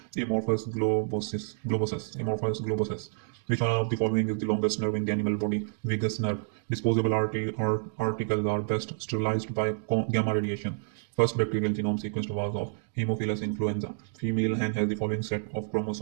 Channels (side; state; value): left; silent; digital silence